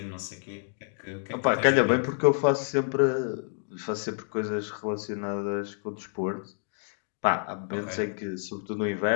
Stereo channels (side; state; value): right; silent; 59 dB below the other